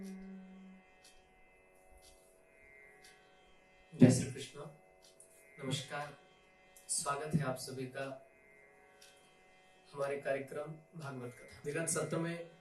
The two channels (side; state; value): both; identical; correlation 1.00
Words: जय श्री कृष्ण। नमस्कार, स्वागत है आप सभी का हमारे कार्यक्रम भागवत कथा। विगत सत्र में